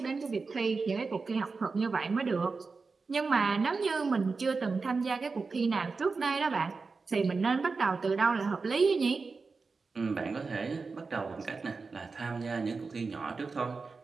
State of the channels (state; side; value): quieter; left; 4.4 dB